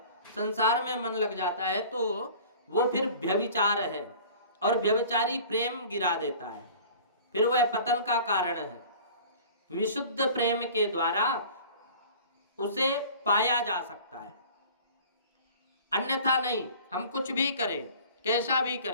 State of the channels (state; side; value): inverted; both; correlation -0.45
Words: संसार में मन लग जाता है, तो वो फिर व्यभिचार है और व्यभिचारी प्रेम गिरा देता है, फिर वह पतन का कारण है। विशुद्ध प्रेम के द्वारा उसे पाया जा सकता है, अन्यथा नहीं। हम कुछ भी करें, कैसा भी